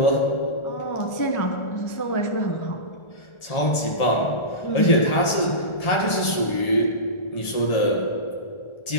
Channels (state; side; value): late; right; 1.4 ms